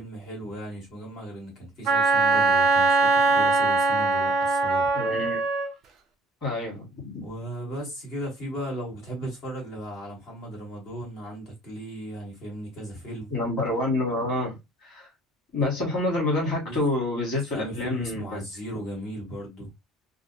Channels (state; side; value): normal; both; correlation 0.57